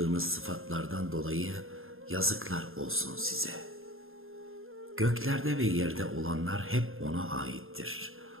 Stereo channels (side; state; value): left; late; 0.60 ms